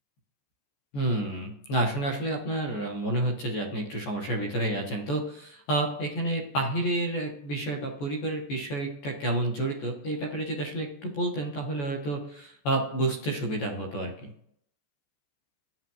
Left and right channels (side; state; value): right; late; 14 ms